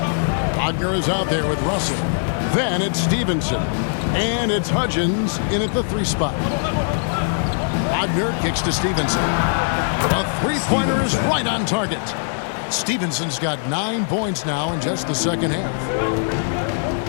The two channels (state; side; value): silent; right; 65 dB below the other